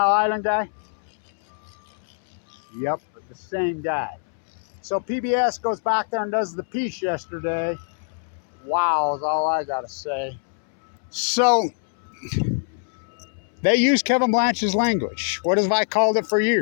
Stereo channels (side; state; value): right; silent; 63 dB below the other